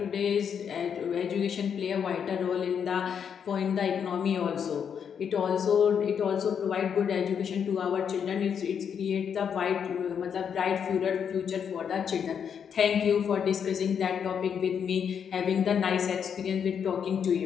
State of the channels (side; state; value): right; quieter; 7.5 dB